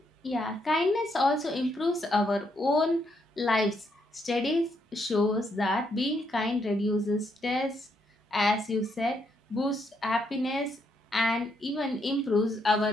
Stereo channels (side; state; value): both; normal; correlation 0.76